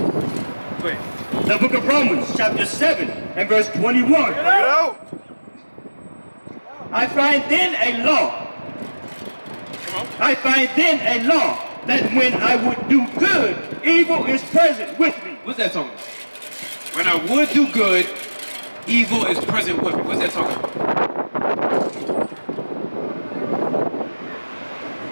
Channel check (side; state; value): both; inverted; correlation -1.00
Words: The book of Romans, chapter 7 and verse 21. I find then a law. I find then a law that when I would do good, evil is present with me. What's that talking about? When I would do good, evil is present with me. What's that talking about?